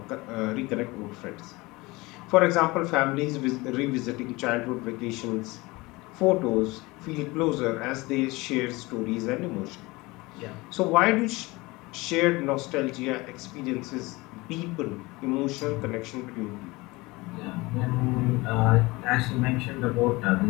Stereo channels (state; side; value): quieter; right; 22.6 dB